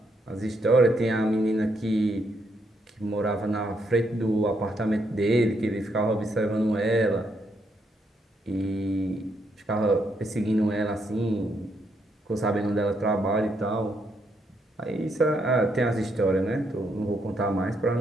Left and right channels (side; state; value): both; normal; correlation 0.76